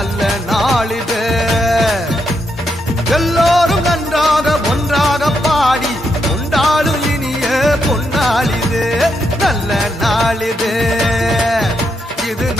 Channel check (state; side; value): normal; both; correlation 0.81